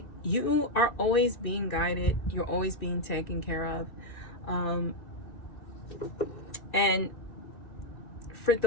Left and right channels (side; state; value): right; late; 2.1 ms